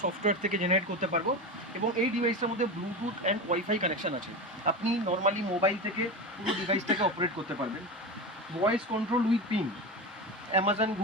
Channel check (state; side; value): normal; both; correlation 0.23